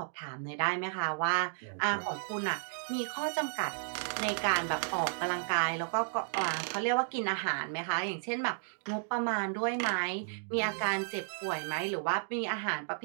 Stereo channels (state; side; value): silent; left; digital silence